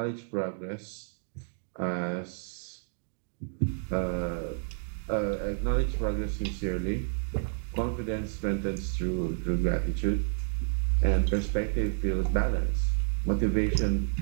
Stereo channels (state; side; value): silent; left; digital silence